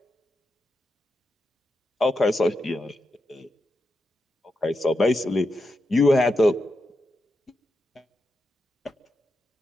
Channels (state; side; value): normal; both; correlation 0.87